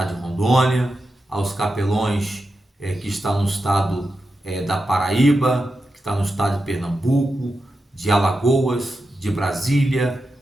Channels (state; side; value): normal; both; correlation 0.89